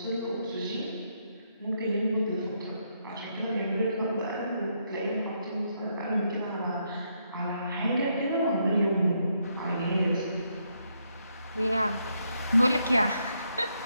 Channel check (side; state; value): both; inverted; correlation -0.77